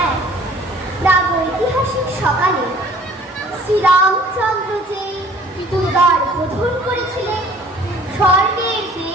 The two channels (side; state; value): both; normal; correlation 0.53